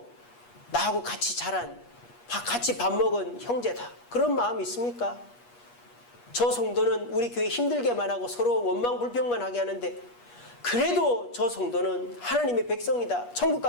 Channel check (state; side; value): late; right; 8.3 ms